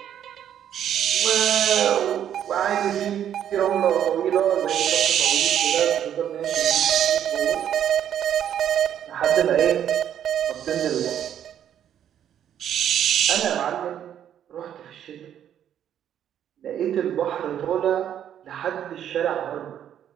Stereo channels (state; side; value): quieter; left; 10.0 dB